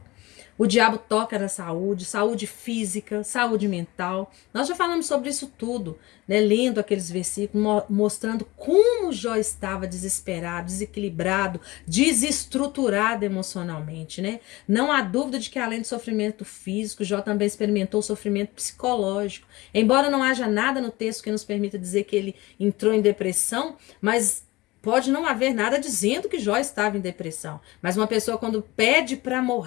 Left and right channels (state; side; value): quieter; right; 20.5 dB